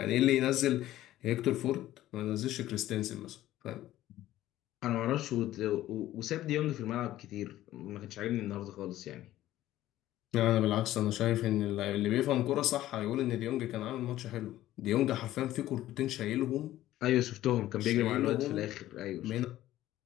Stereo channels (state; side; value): quieter; right; 14.4 dB